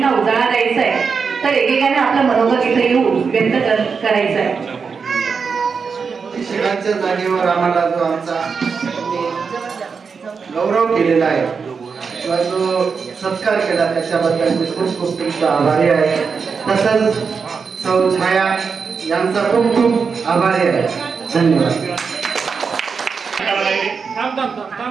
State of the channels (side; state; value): left; quieter; 5.5 dB